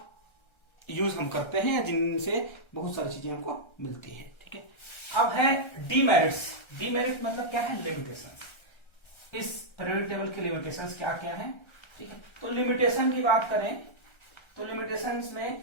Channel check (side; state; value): right; late; 1.3 ms